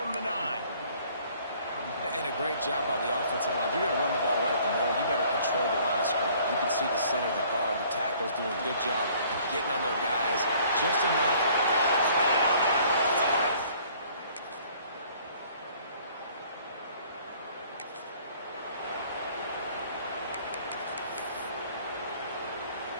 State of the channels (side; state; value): both; inverted; correlation -0.57